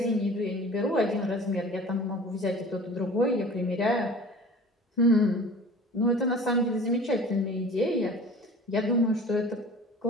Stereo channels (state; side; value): normal; both; correlation 0.42